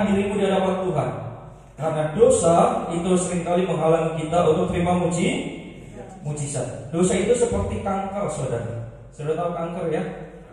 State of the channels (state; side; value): identical; both; correlation 1.00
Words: dirimu di hadapan Tuhan. Karena dosa itu seringkali menghalangi kita untuk terima mujizat. Dosa itu seperti kanker, saudara. Saudara tahu kanker ya?